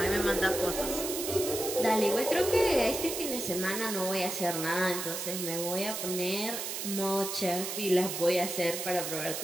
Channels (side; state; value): right; noise; hiss, 4 dB below the sound